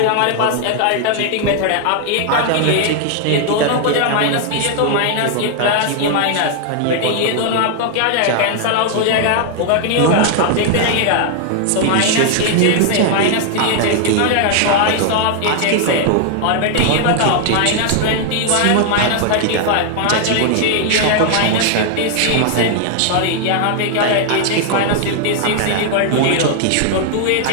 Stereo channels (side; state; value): both; different; correlation 0.00